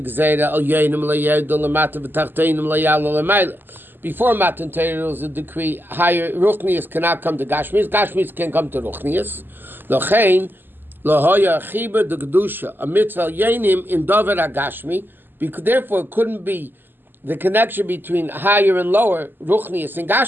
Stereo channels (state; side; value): late; left; 0.093 ms